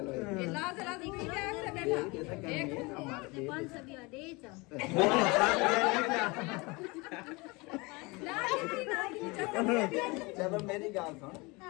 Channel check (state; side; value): quieter; right; 25.9 dB